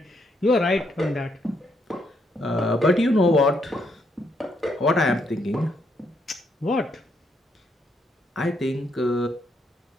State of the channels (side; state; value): both; normal; correlation 0.75